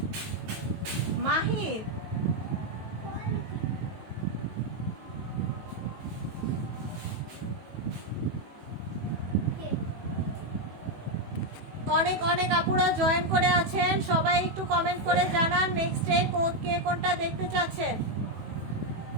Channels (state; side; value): late; left; 18 ms